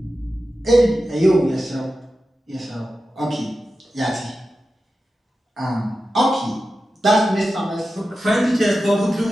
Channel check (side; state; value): both; normal; correlation 0.92